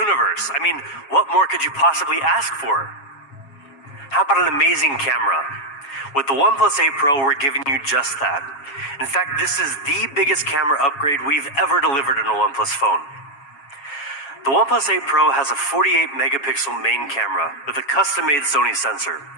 I mean, what more could you possibly ask for? How about an amazing camera? With the OnePlus 8 Pro, we're giving you just that. In fact, this is the biggest camera upgrade we've ever delivered in a OnePlus phone. The OnePlus 8 Pro has a 48 megapixel main camera with a custom-made Sony sensor,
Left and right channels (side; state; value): right; late; 7.4 ms